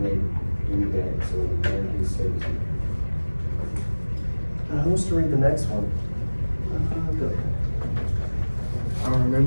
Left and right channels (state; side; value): inverted; both; correlation -1.00